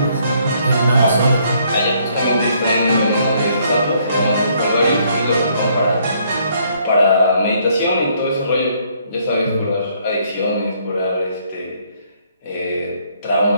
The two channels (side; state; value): both; inverted; correlation -0.67